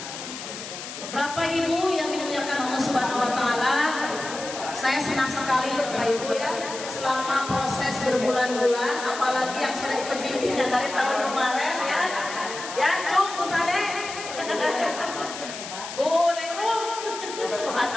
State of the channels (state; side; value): noise; left; hiss, 9 dB below the sound